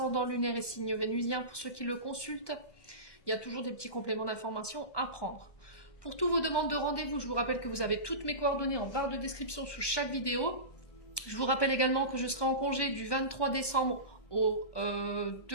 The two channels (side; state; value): right; late; 1.1 ms